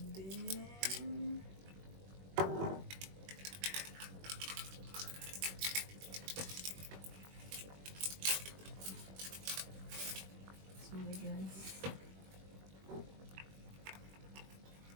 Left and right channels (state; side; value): late; left; 21 ms